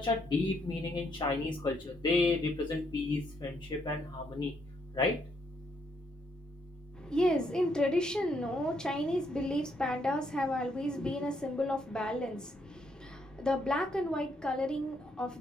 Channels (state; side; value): normal; both; correlation 0.74